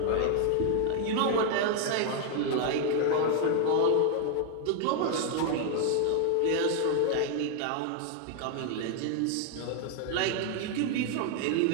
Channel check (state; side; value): different; both; correlation 0.00